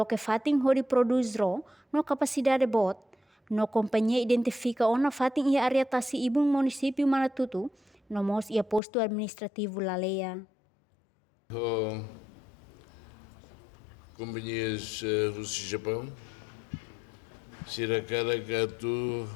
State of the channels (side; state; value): right; drops out; at 8.8 s